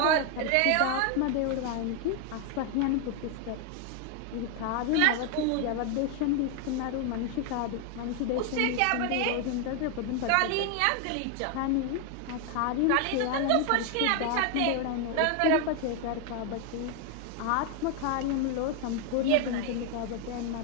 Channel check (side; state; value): both; different; correlation 0.01